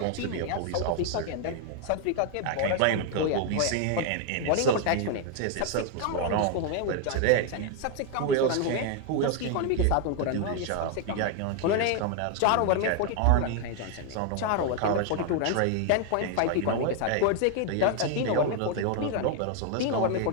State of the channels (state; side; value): different; both; correlation 0.00